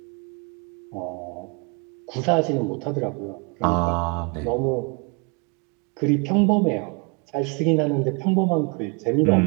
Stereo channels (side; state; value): left; quieter; 32.2 dB